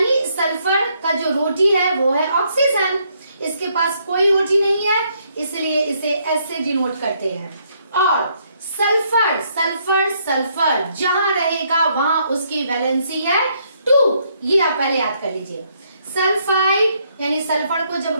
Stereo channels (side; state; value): both; inverted; correlation -0.72